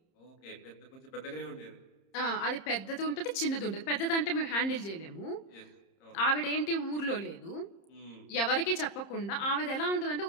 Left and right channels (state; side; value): late; right; 30 ms